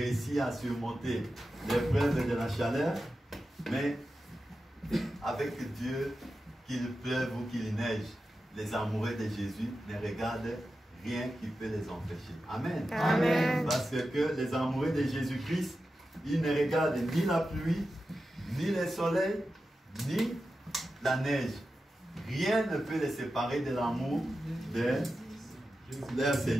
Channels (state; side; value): normal; both; correlation 0.92